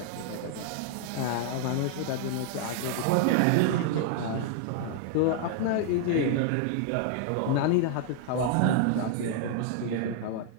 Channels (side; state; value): both; different; correlation 0.00